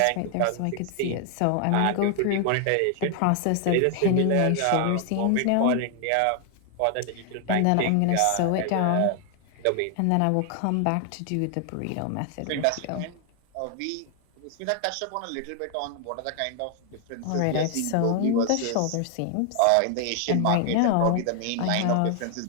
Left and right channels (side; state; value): both; different; correlation 0.00